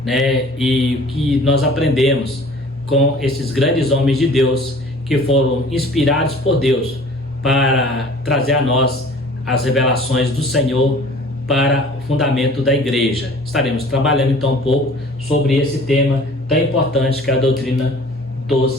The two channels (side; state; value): both; normal; correlation 0.48